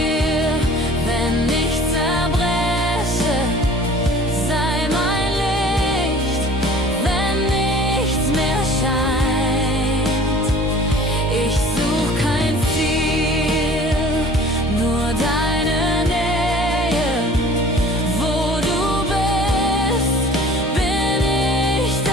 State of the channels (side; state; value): both; normal; correlation 0.47